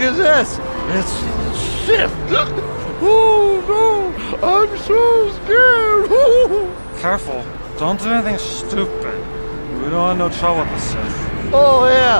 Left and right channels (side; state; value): both; inverted; correlation -1.00